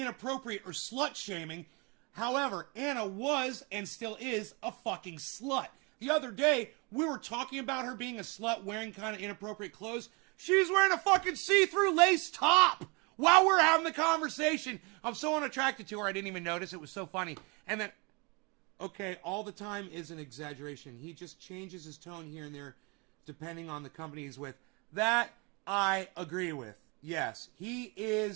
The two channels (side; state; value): left; quieter; 29.7 dB